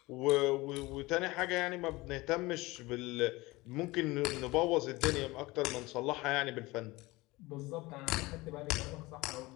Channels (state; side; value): quieter; right; 21.4 dB